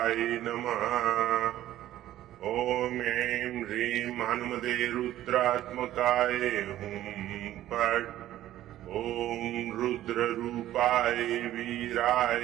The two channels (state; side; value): quieter; left; 13.5 dB